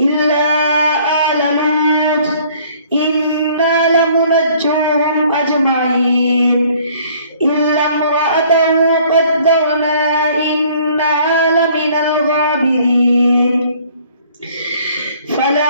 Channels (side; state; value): both; inverted; correlation -0.57